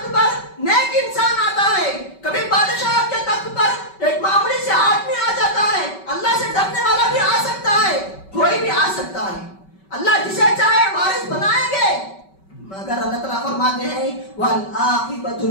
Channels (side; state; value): right; late; 5.2 ms